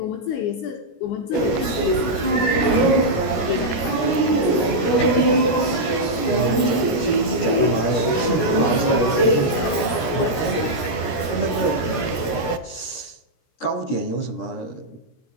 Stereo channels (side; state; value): right; late; 17 ms